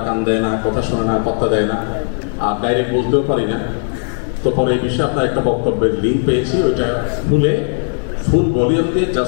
কান দেয় না, কথা শোনে না, পাত্তা দেয় না, আর ডাইরেক্ট বলতেও পারি না। তো পরে এই বিষয়ে আপনার একটা বক্তব্যের লিঙ্ক পেয়েছি, ওইটা খুলে ফুল ভলিউম দিয়ে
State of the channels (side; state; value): right; silent; 60 dB below the other